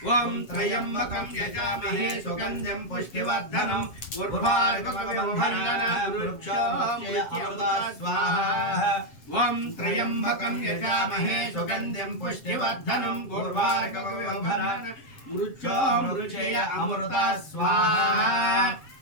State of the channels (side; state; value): right; late; 7.5 ms